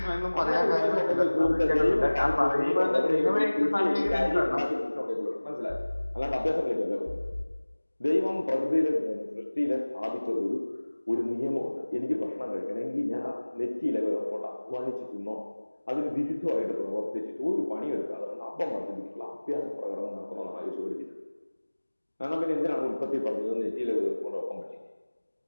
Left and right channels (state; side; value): inverted; both; correlation -1.00